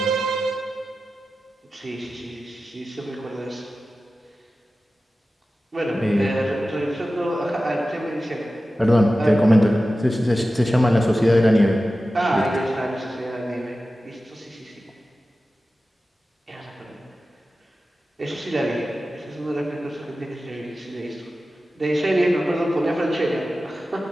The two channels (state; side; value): normal; both; correlation 0.94